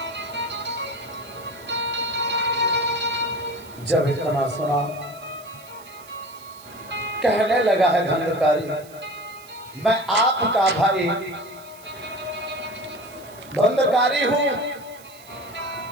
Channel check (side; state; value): right; noise; hiss, 22 dB below the sound